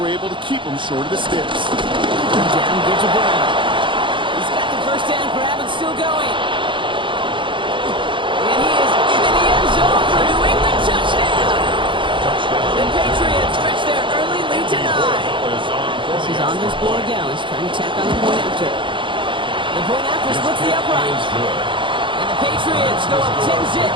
able to keep him short of the sticks. Down, get to Brown. He's got the first down grab and still going. And he is in the end zone for a New England touchdown. The Patriots stretch their early lead to 9. This is Andres Borregales trying to tack on the point after. The point after splits the upright. And the Patriots go up 10-zip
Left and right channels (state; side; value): late; left; 0.24 ms